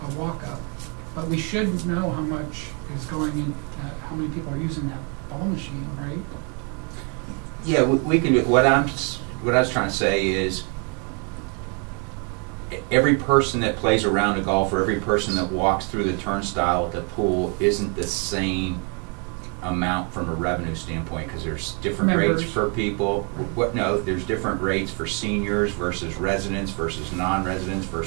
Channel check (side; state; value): left; quieter; 36.4 dB